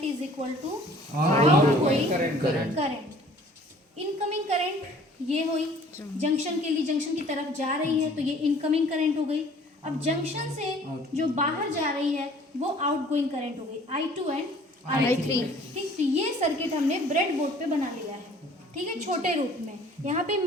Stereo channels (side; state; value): both; normal; correlation 0.53